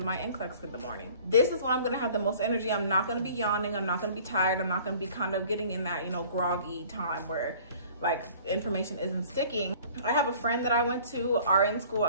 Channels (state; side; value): inverted; both; correlation -0.49